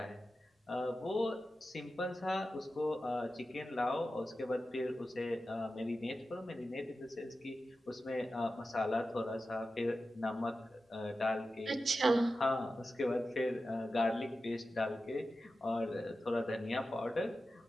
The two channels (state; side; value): normal; both; correlation 0.92